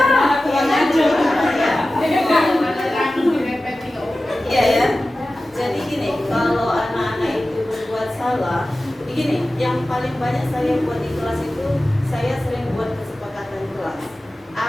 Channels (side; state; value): both; normal; correlation 0.95